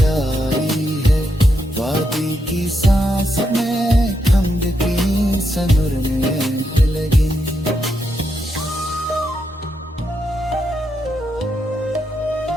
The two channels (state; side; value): normal; both; correlation 0.82